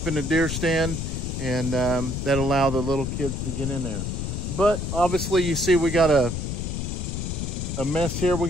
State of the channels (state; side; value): noise; left; rumble, 3 dB below the sound